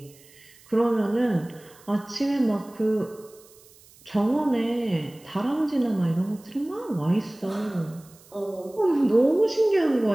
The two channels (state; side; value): noise; right; hiss, 26 dB below the sound